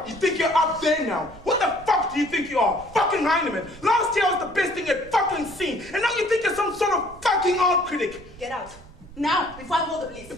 you think you're up there now? What the fuck do you think you are? Fucking Heinemann! Last year was the best thing you'd fucking seen, and now you think you're some sort of fucking art critic! Get out. Now, before I call the police.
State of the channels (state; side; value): noise; right; rumble, 20 dB below the sound